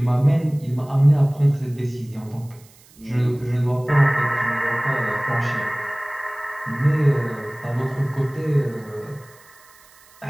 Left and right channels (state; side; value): noise; right; hiss, 27 dB below the sound